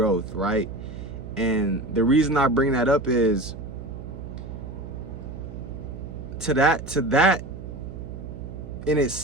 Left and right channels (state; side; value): noise; right; hum, 10 dB below the sound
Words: right? And the reason I bring that up is to that in